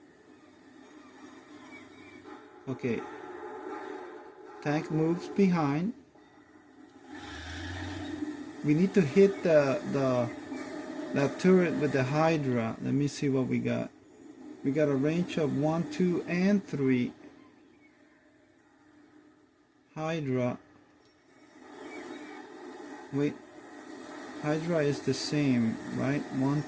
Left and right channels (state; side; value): identical; both; correlation 1.00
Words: Okay, Tank moves behind. We need to hit that turret with the Hydra. Let me see what we got. We got a range of 1, 2, and 3. Hydra. Wait. Hydra is the same, right? 1,